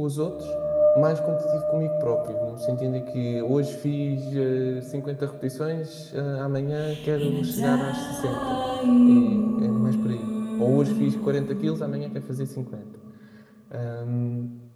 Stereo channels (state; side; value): identical; both; correlation 1.00